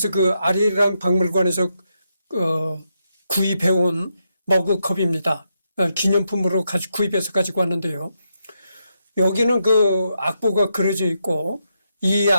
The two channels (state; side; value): inverted; both; correlation -0.83